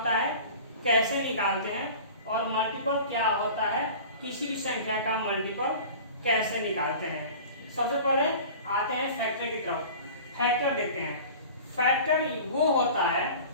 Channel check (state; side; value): inverted; both; correlation -0.40